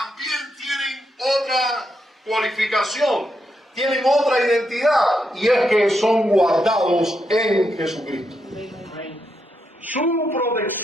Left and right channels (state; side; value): normal; both; correlation 0.82